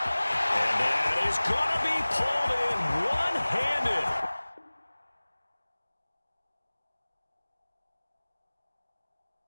that is going to be pulled in one-handed.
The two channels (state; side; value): inverted; both; correlation -1.00